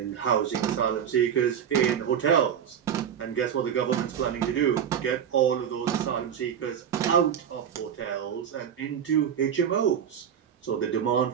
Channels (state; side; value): quieter; left; 8.6 dB